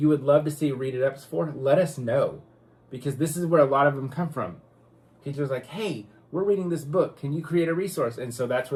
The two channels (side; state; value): both; identical; correlation 1.00